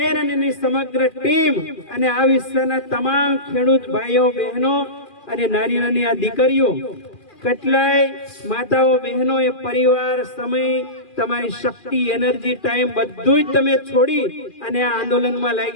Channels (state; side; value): late; right; 2.4 ms